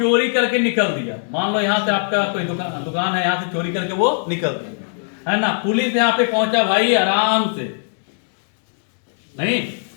करके निकल दिया। मान लो यहां से आपका कोई दुकान है, यहां से चोरी करके वो निकल दिया, है ना। पुलिस यहां पे पहुंचा भाई आराम से, नहीं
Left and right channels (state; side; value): silent; right; digital silence